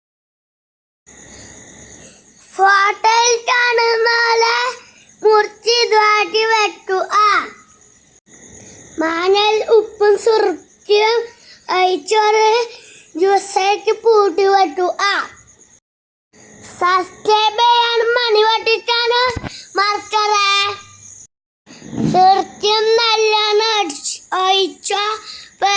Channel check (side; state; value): both; identical; correlation 1.00